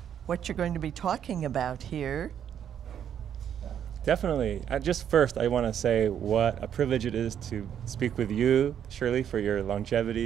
what you're going to be talking about here? Definitely. First, I want to say what a privilege it is to speak with you, Shirley, for your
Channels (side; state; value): left; quieter; 9.1 dB